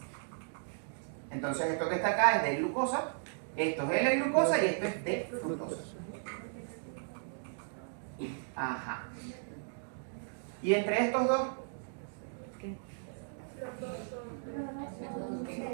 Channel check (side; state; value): left; silent; digital silence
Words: Entonces esto que está acá es de glucosa, esto es L-glucosa y esto es de fructosa. Ajá. ¿Y entre estos dos?